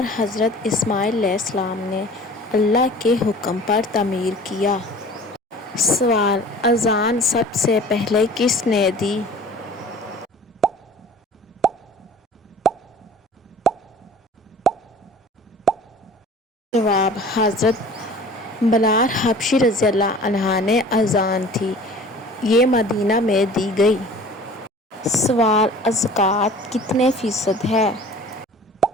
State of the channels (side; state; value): both; normal; correlation 0.45